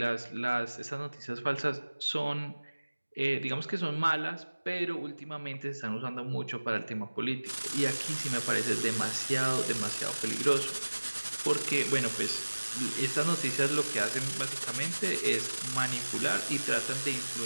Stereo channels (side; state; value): both; inverted; correlation -1.00